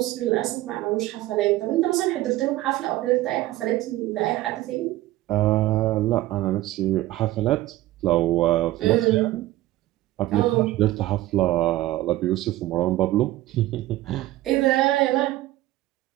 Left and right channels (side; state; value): left; quieter; 16.4 dB